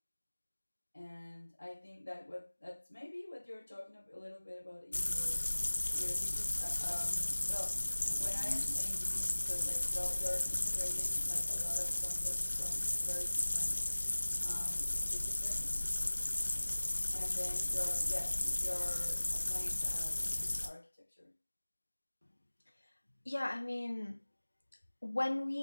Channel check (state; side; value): inverted; both; correlation -1.00